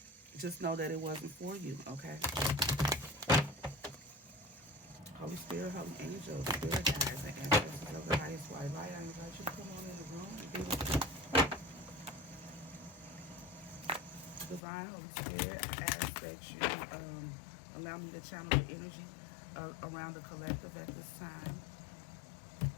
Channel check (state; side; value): drops out; right; at 14.6 s